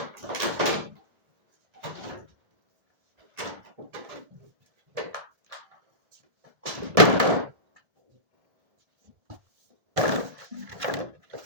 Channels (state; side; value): late; left; 1.6 ms